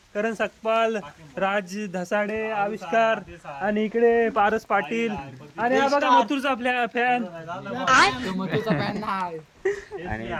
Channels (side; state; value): both; identical; correlation 1.00